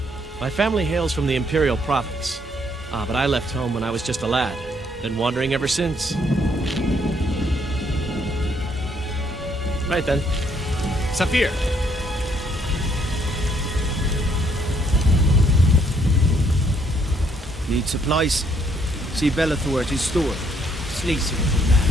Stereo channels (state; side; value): normal; both; correlation 0.68